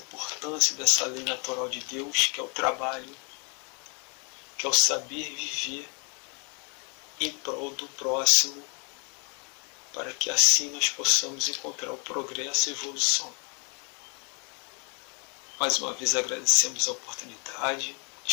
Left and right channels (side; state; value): right; quieter; 33.9 dB